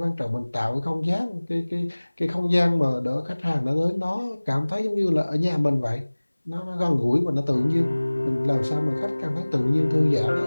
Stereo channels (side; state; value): both; inverted; correlation -1.00